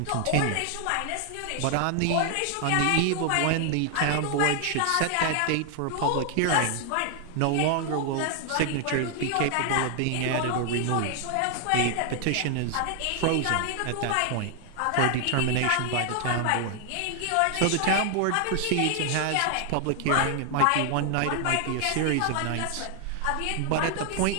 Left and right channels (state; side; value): different; both; correlation 0.00